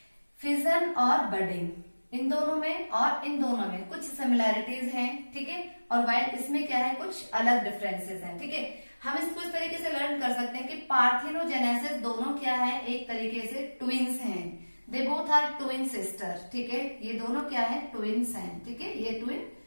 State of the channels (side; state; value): both; inverted; correlation -1.00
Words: फिजन और बडिंग, इन दोनों में और इन दोनों में कुछ सिमिलैरिटीज हैं, ठीक है। और वाइल इसमें क्या है, कुछ अलग डिफरेंसेस हैं, ठीक है। हम इसको इस तरीके से लर्न कर सकते हैं कि पार्थिनोजेनेसिस दोनों क्या है, एक तरीके से ट्विंस हैं, they both are twin sister, ठीक है। ये दोनों क्या है, ट्विंस हैं, ठीक है, ये ट्विन